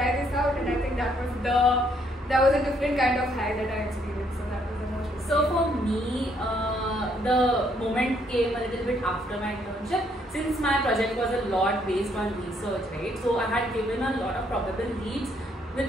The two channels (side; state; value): both; normal; correlation 0.69